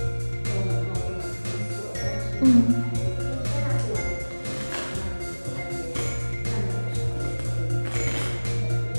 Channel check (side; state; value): both; inverted; correlation -1.00